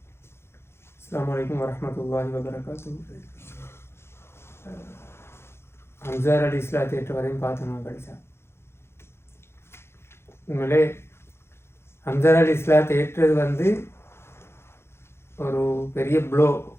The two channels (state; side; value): late; right; 0.12 ms